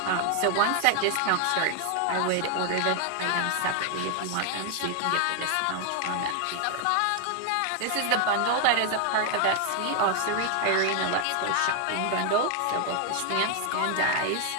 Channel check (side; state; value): both; different; correlation 0.00